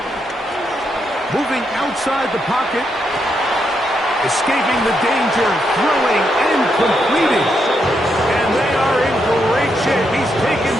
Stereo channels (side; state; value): both; normal; correlation 0.80